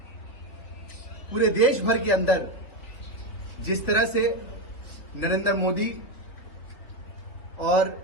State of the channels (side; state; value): right; late; 3.6 ms